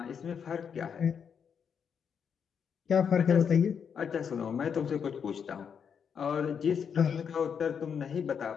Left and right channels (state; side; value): quieter; right; 7.1 dB